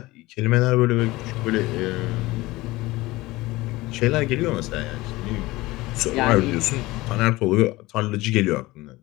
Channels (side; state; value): right; quieter; 19.8 dB